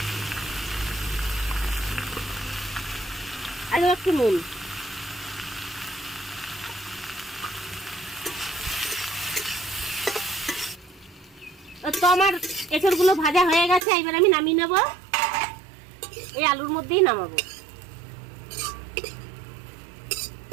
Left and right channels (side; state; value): left; drops out; at 13.8 s